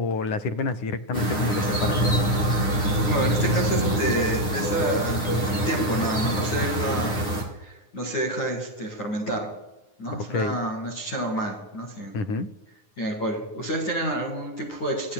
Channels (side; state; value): right; late; 9.7 ms